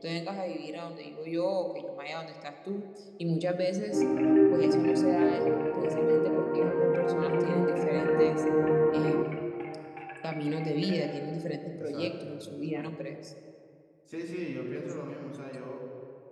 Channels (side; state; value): both; identical; correlation 1.00